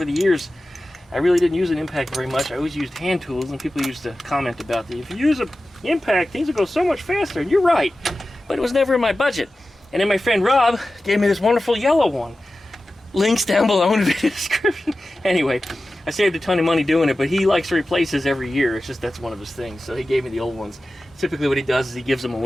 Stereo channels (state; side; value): normal; both; correlation 0.95